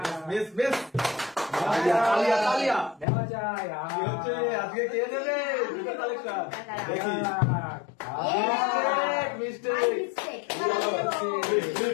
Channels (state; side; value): drops out; right; at 3.1 s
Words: মিস তালিয়া নেওয়া যায়। কি হচ্ছে আজকে? কে নেবে জুতো কালেকশন? দেখি। মিস্টেক